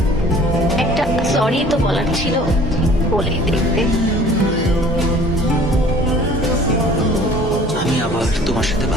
একটা সরি তো বলার ছিল, বলেই দেখতে। আমি আবার তোমার সাথে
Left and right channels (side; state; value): both; normal; correlation 0.50